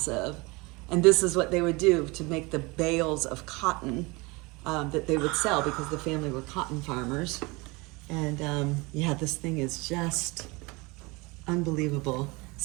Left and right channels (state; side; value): quieter; left; 25.3 dB